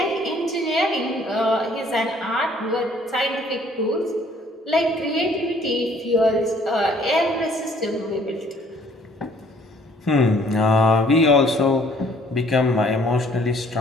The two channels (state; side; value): normal; both; correlation 0.59